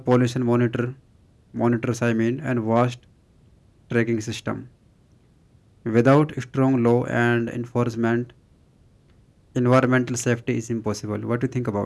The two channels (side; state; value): both; identical; correlation 1.00